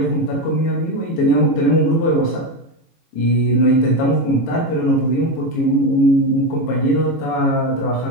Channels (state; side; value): late; right; 18 ms